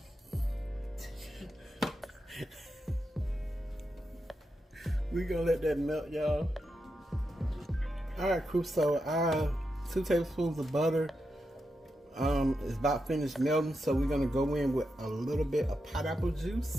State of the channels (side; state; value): both; normal; correlation 0.87